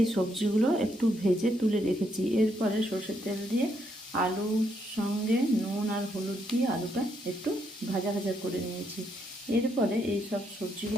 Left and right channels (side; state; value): both; normal; correlation 0.76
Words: সবজিগুলো একটু ভেজে তুলে রেখেছি। এরপরে সরষের তেল দিয়ে আলুর সঙ্গে নুন আর হলুদ দিয়ে আলুটা একটু ভাজা ভাজা করে নিয়েছি। এরপরে এই সব